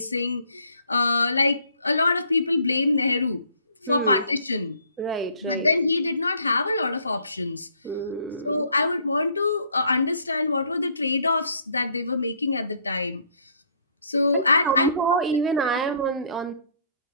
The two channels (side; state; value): both; inverted; correlation -0.63